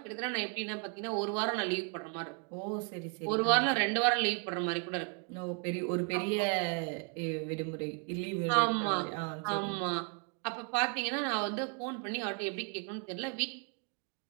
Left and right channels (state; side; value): quieter; left; 38.2 dB